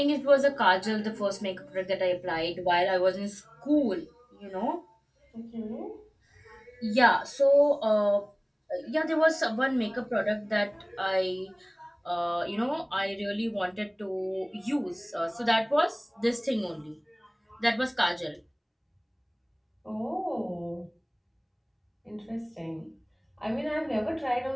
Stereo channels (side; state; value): both; identical; correlation 1.00